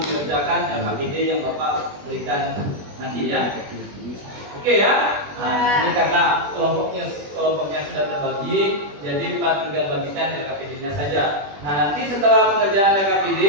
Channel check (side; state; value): left; late; 21 ms